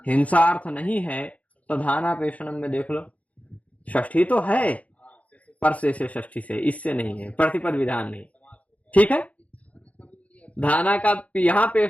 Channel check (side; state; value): right; late; 0.067 ms